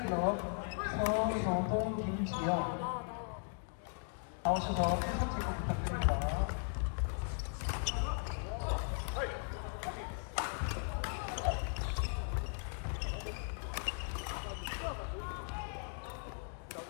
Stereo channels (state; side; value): silent; right; 53 dB below the other